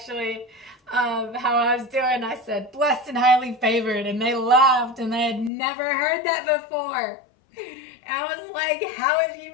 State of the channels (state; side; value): drops out; right; at 5.5 s